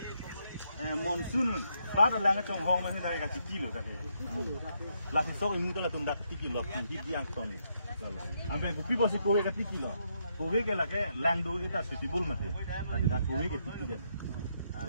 monsoon rada lang chong hong mani dai ka kilo dake la si sok imu la tunda kilo pinggit yang ton ampe gupi bosi kowe ka kilo kowe ke lage lang do ita suitable mate lagi da kowe ke kilo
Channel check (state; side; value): inverted; both; correlation -0.77